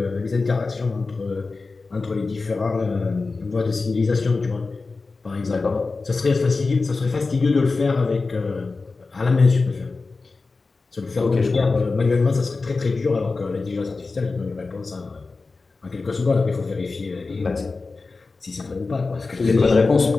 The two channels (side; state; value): right; quieter; 3.9 dB